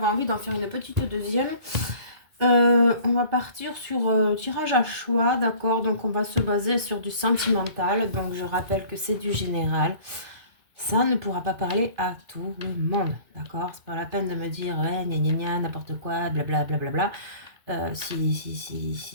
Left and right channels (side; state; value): left; late; 2.2 ms